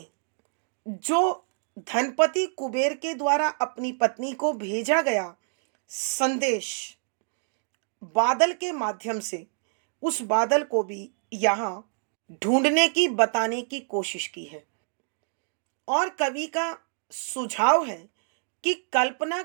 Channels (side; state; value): left; silent; digital silence